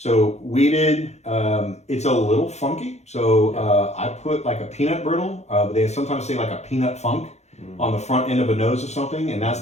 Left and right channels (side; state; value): right; late; 0.32 ms